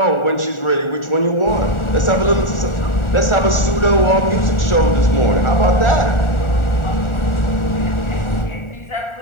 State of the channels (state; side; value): late; right; 1.4 ms